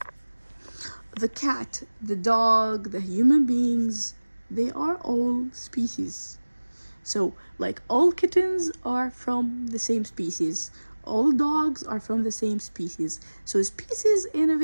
the cat, the dog, the human beings, they are all species. So, all kittens are from the same species. All dogs are from the same species. So, species, in a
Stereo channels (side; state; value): both; inverted; correlation -1.00